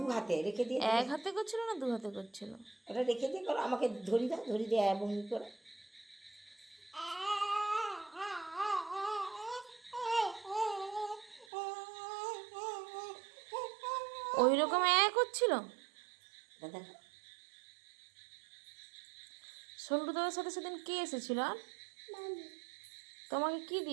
হাতে রেখে দিয়ে, এক হাতে করছিল না দু হাতে করছিল? এটা রেখে দিয়ে করো, আমাকে ধরি দাও, ধরি দিয়ে ভঙ্গি করে। ওই রকম করছিল। দেখো সন্তু দাদার সাথে সেদিন কে এসেছিল আর তোমাকে কি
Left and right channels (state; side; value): drops out; left; at 11.5 s